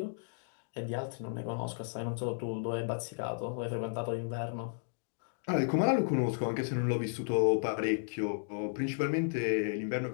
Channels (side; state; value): right; silent; digital silence